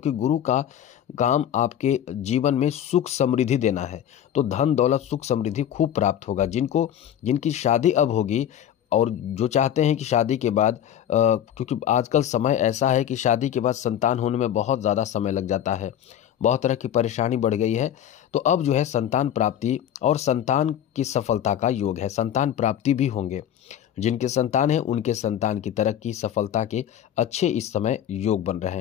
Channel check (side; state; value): right; quieter; 10.2 dB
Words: गुरु का काम आपके जीवन में सुख समृद्धि देना है। तो धन दौलत सुख समृद्धि खूब प्राप्त होगा। जिनकी शादी अब होगी और जो चाहते हैं कि शादी के बाद क्योंकि आजकल समय ऐसा है कि शादी के बाद संतान होने में बहुत ज़्यादा समय लग जाता है, बहुत तरह की परेशानी बढ़ गई है। तो अब जो है संतान प्राप्ति और संतान की सफलता का योग है, संतान प्राप्ति भी होंगे। जिनके संतान है उनके संतान की तरक्की सफलता के अच्छे इस समय योग बन रहे